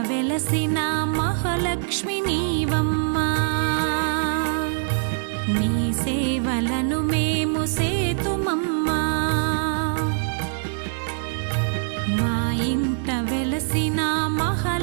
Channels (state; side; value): silent; left; digital silence